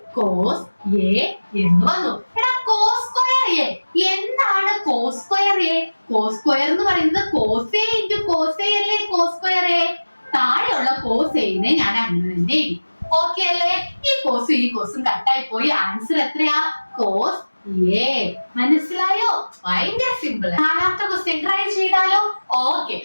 കോസ് എ എന്ന് വന്നു. എടാ, കോസ് സ്ക്വയർ എ എന്താണ്? Cos square A, cos square എന്ന് പറയുന്നത് cos A into cos A അല്ലേ. കോസ് സ്ക്വയർ എ താഴെയുള്ള കോസ് എനെ ഞാൻ അങ്ങനെ തന്നെ എഴുതി. ഓക്കെ അല്ലേ? ഈ കോസും കട്ടായി പോയി. ആൻസർ എത്രയാ? Cos A. മനസ്സിലായോ? ഭയങ്കര സിമ്പിൾ. നാലാമത്തെ ക്വസ്റ്റ്യൻ ട്രൈ ചെയ്താലോ? Okay,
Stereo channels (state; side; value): inverted; both; correlation -1.00